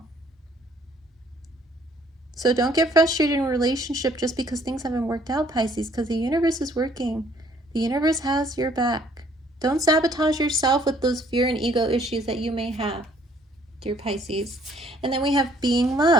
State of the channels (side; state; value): both; normal; correlation 0.62